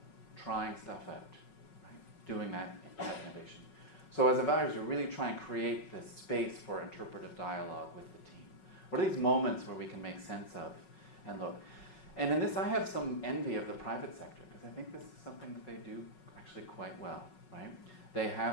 trying stuff out, right? Doing that innovation. So as evaluators, we really try and create this space for interpretive dialogue with the team. What are these moments where we can make sense of and look? And in this, I have some envy of the private sector, because I think this is something that they do actually quite well, right? They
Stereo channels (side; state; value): right; late; 5.4 ms